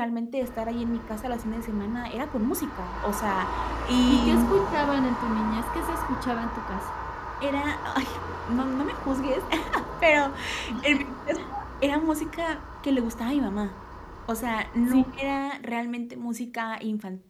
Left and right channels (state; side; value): identical; both; correlation 1.00